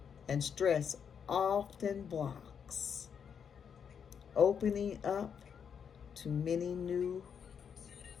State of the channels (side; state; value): right; quieter; 7.3 dB